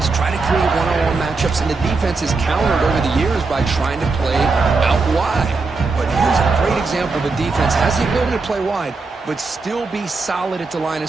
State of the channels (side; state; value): left; quieter; 4.1 dB